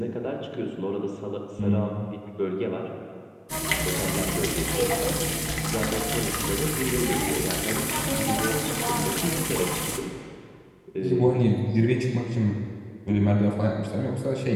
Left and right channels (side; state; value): both; identical; correlation 1.00